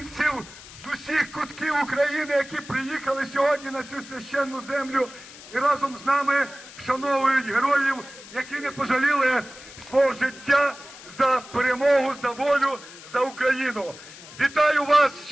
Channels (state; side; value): noise; left; hiss, 17 dB below the sound